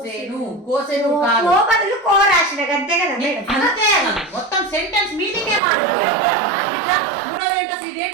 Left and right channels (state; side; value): drops out; left; at 5.6 s